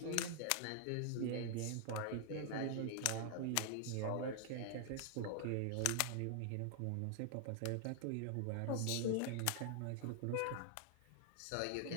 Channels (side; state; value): both; different; correlation -0.01